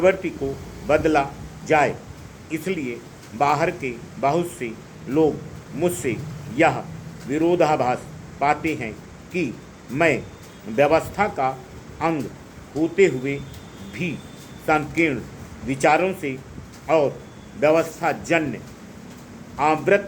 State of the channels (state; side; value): identical; both; correlation 1.00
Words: को बदला जाए। इसलिए बाहर के बहुत से लोग मुझसे यह विरोधाभास पाते हैं कि मैं व्यवस्था का अंग होते हुए भी संकीर्ण विचारों से और व्यवस्थाजन्य